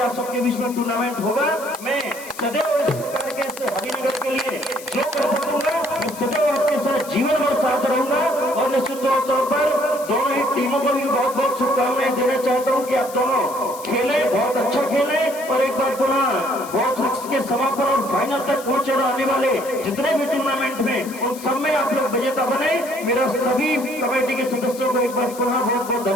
सबके बीच में टूर्नामेंट होगा। मैं सदैव इस प्रकार के हरिनगर के लिए जो कर सकूंगा मैं सदैव आपके साथ जीवन भर साथ रहूंगा और निश्चित तौर पर दोनों ही टीमों को भी बहुत बहुत शुभकामनाएं देना चाहता हूं कि आप दोनों खेले, बहुत अच्छा खेले और एक बार पुनः बहुत के समापन और फाइनल तक पहुंचे आने वाले जितने भी टूर्नामेंट में उन सब में आप लोग विजेता बने। मेरा सभी कमेटी के सदस्यों को एक बार पुनः बहुत बहुत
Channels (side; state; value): left; noise; hiss, 15 dB below the sound